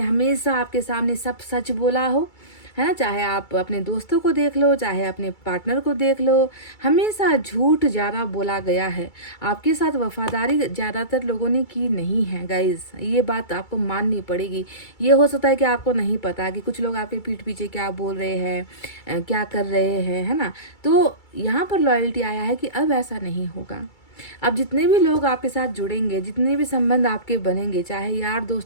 हमेशा आपके सामने सब सच बोला हो, है ना। चाहे आप अपने दोस्तों को देख लो, चाहे अपने पार्टनर को देख लो, हमेशा झूठ ज़्यादा बोला गया है। आपके साथ वफादारी ज़्यादातर लोगों ने की नहीं है गाइस, ये बात आपको माननी पड़ेगी। ये हो सकता है कि आपको नहीं पता कि कुछ लोग आपके पीठ पीछे क्या बोल रहे हैं, क्या कर रहे हैं, है ना। तो यहाँ पर लॉयल्टी आया है कि अब ऐसा नहीं होगा। अब जितने भी लोग आपके साथ जुड़ेंगे, जितने भी संबंध आपके बनेंगे, चाहे यार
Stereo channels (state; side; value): late; right; 2.3 ms